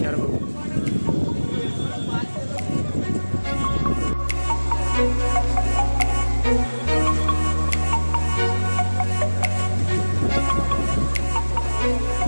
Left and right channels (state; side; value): inverted; both; correlation -1.00